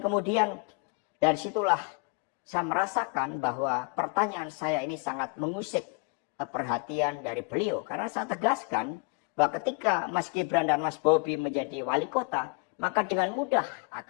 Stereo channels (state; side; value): quieter; right; 31.9 dB